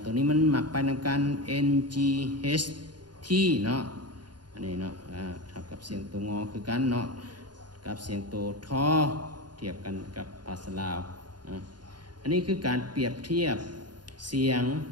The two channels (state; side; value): late; left; 0.70 ms